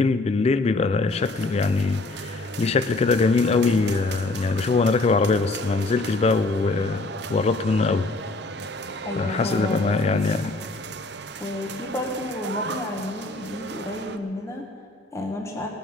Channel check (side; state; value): right; quieter; 3.1 dB